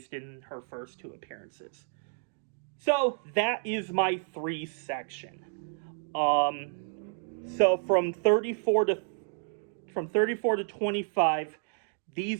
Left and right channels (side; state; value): left; silent; 57 dB below the other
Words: in her first 2 appearances. So that is my 3 section. So from 34 to 25,